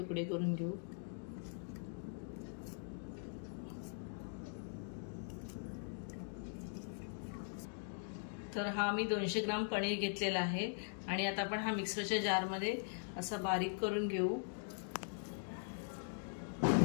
करून घेऊ। तर हा मी 200 ग्राम पनीर घेतलेला आहे आणि आता आपण हा मिक्सरच्या जारमध्ये असा बारीक करून घेऊ।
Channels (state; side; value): silent; right; digital silence